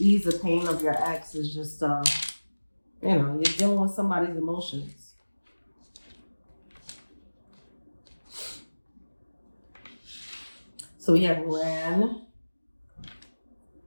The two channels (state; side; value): inverted; both; correlation -1.00